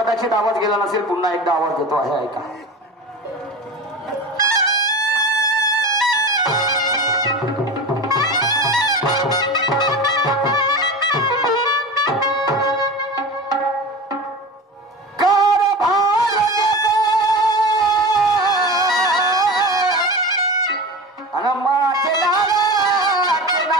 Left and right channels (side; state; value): both; normal; correlation 0.30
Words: आवाज गेला नसेल. पुन्हा एकदा आवाज देतो आहे, ऐका.